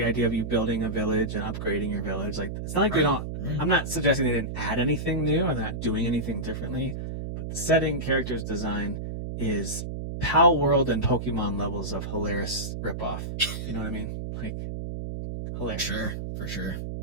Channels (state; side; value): noise; right; hum, 5 dB below the sound